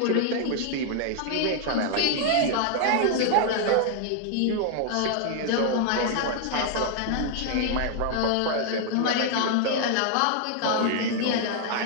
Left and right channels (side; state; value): both; different; correlation 0.00